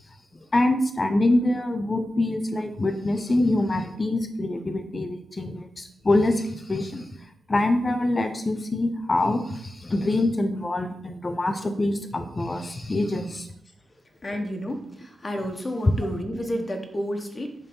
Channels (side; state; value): both; normal; correlation 0.93